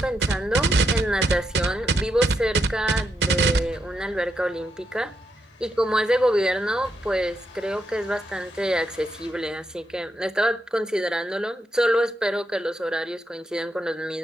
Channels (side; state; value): both; normal; correlation 0.81